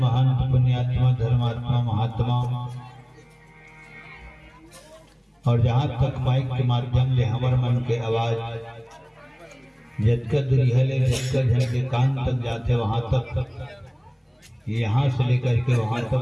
पुण्यात्मा, धर्मात्मा, महात्मा, और जहां तक माइक के माध्यम ले हमर मन के आवाज जतकर दुरिहले जतकर जन के कान तक जाते वहां तक, यहाँ से लेकर के वहां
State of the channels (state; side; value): identical; both; correlation 1.00